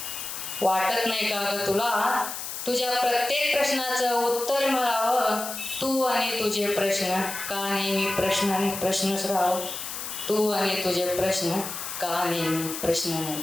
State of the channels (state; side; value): noise; left; hiss, 7 dB below the sound